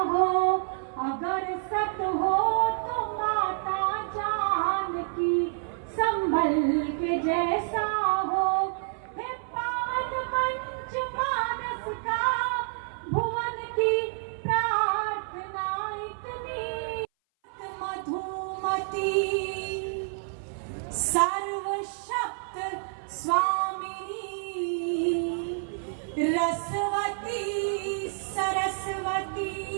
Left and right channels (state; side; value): silent; left; 57 dB below the other